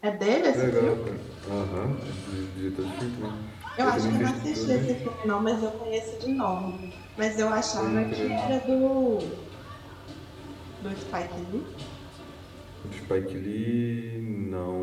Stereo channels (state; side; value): identical; both; correlation 1.00